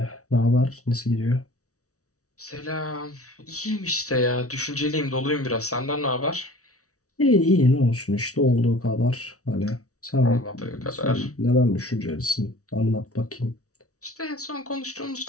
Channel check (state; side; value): late; right; 0.66 ms